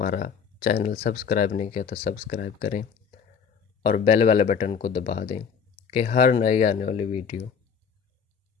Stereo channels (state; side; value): quieter; right; 6.5 dB